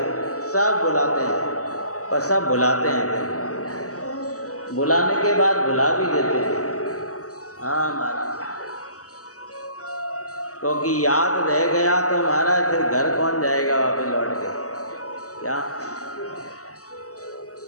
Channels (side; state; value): right; late; 0.66 ms